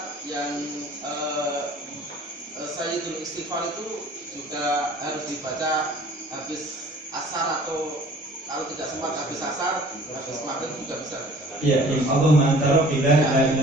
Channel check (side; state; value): both; normal; correlation 0.50